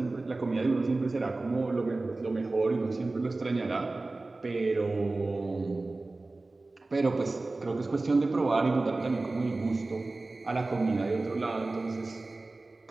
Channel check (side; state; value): left; quieter; 3.2 dB